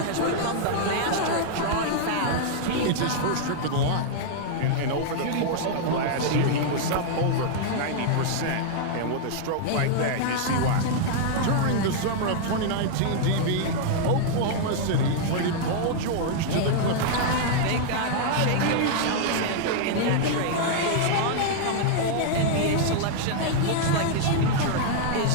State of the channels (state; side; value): different; both; correlation -0.01